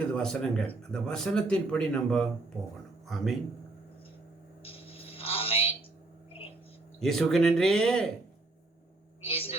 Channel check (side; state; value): left; quieter; 3.1 dB